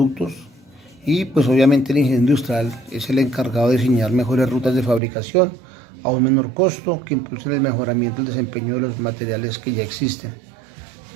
y pues obviamente el ingeniero industrial es el encargado de diseñar mejores rutas de fabricación a un menor costo que impulsen el mejoramiento del desempeño de los materiales que ya existen.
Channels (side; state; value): left; drops out; at 5.0 s